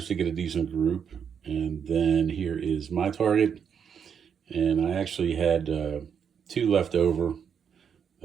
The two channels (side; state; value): left; quieter; 7.5 dB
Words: to get a decent group. And then here is my target, and I actually had 2 left over